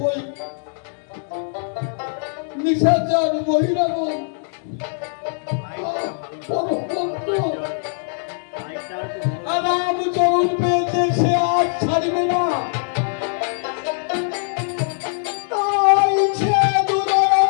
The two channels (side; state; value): right; silent; digital silence